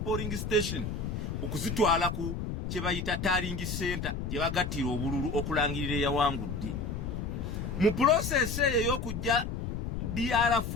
station okuzitwala ku kye bayita tallying center gye bagattira obululu okulangirira eyawangudde mu process eyo y'okujja DR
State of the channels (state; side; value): noise; left; rumble, 4 dB below the sound